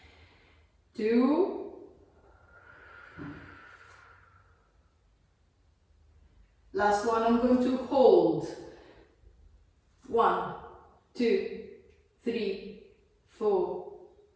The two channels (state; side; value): identical; both; correlation 1.00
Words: 2. Last one, I'm going to hold. 1, 2, 3, 4,